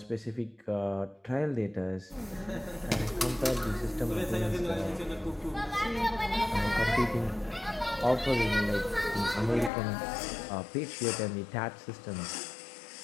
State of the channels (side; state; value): right; drops out; at 9.7 s